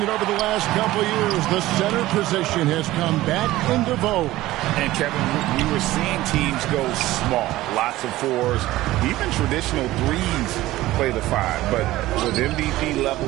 it over the last couple of years. The center position has come back into vogue. And Kevin, we were seeing teams go small. Lots of 4s. Even traditional 3s play the 5. But with MVP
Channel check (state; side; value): quieter; left; 16.7 dB